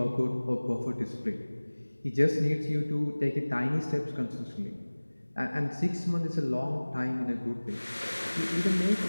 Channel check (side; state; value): both; inverted; correlation -1.00